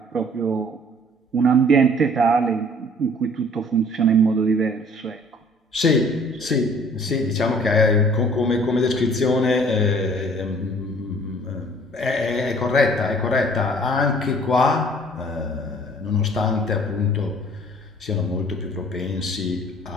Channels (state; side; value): normal; both; correlation 0.54